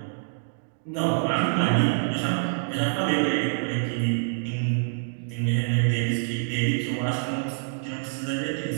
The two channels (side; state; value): left; silent; digital silence